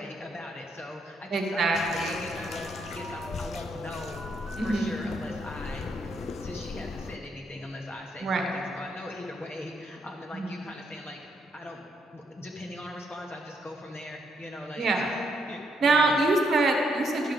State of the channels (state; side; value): normal; both; correlation 0.75